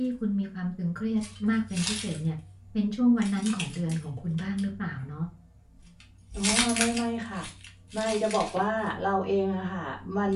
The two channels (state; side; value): identical; both; correlation 1.00